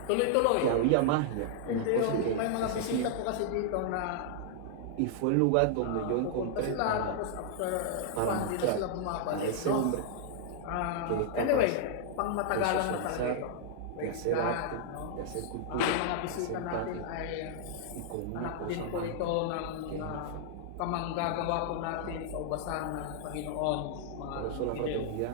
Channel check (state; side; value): different; both; correlation -0.01